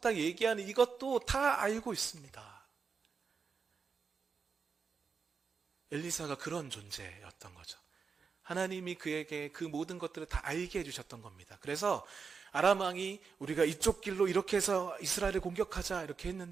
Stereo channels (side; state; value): left; quieter; 5.5 dB